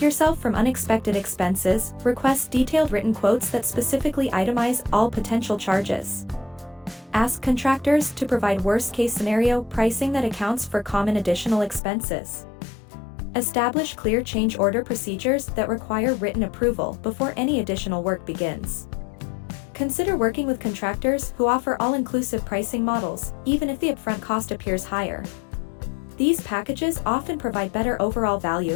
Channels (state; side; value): drops out; right; at 11.8 s